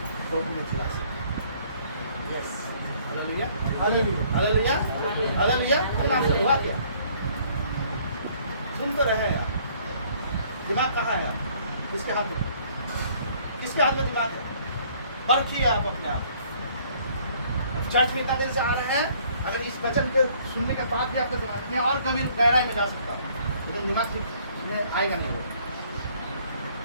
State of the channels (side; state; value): both; inverted; correlation -0.60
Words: कोर्ट में चला सकते हैं। Yes, hallelujah. Hallelujah. Hallelujah. Hallelujah. आपसे हुआ क्या? सुन तो रहे हैं आप, दिमाग कहाँ है? किसके हाथ में? किसके हाथ में दिमाग है? परखिए आप अपने आप। चर्च में इतना देर से आ रहे हैं, अगर इस वचन के सुनने के बाद भी आपका दिमाग में और कभी गहराई में जा सकता है, लेकिन दिमाग में आएगा नहीं,